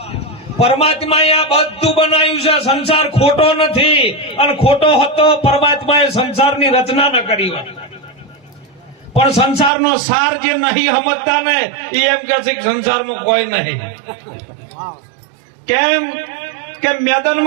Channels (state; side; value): drops out; left; at 9.7 s